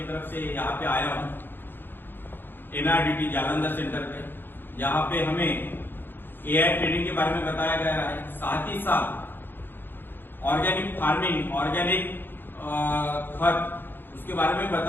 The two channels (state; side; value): late; right; 0.098 ms